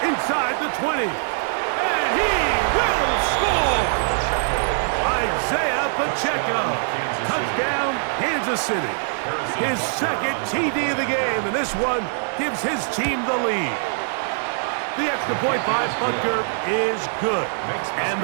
inside the 20. And he will score! Isaiah Pacheco. Touchdown, Kansas City. His second TD of the game, and this one gives his team the lead. The extra point by Butker is good. And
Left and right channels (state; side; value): silent; left; digital silence